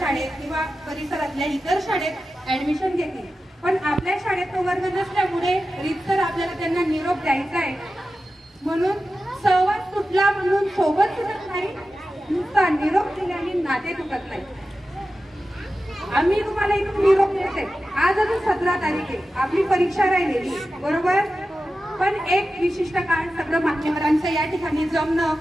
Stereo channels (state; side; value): normal; both; correlation 0.93